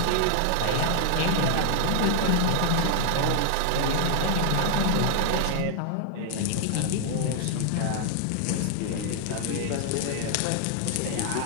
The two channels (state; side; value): different; both; correlation 0.00